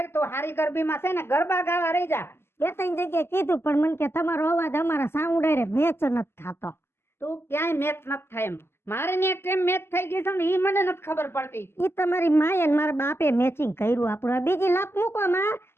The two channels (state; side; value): late; right; 0.12 ms